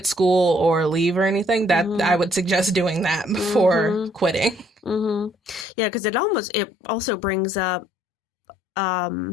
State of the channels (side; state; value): right; drops out; at 5.7 s